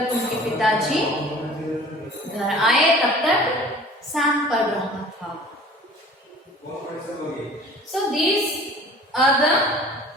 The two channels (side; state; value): both; normal; correlation 0.46